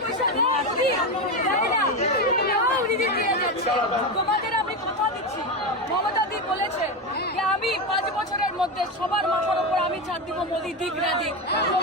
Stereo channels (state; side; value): normal; both; correlation 0.15